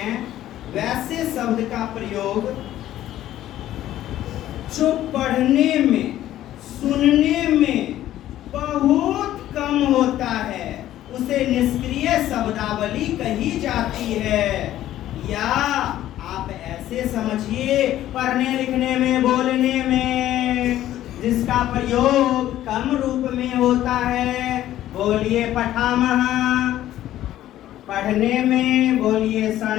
वैसे शब्द का प्रयोग जो पढ़ने में सुनने में बहुत कम होता है, उसे निष्क्रिय शब्दावली कही जाती है। या आप ऐसे समझिए, पढ़ने लिखने में बोलने में जिसका प्रयोग कम रूप में होता है, बोलिए पठामः। पढ़ने में बोलिए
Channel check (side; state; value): right; quieter; 13.2 dB